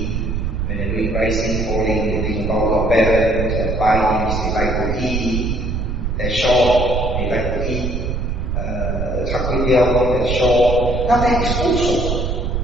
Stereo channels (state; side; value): noise; right; rumble, 2 dB below the sound